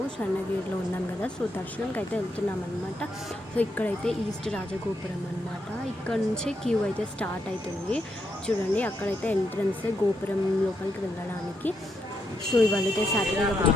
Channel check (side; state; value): both; normal; correlation 0.80